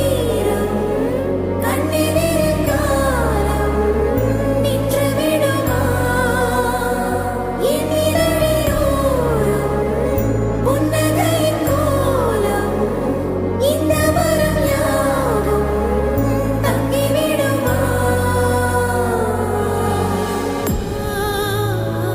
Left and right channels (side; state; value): both; identical; correlation 1.00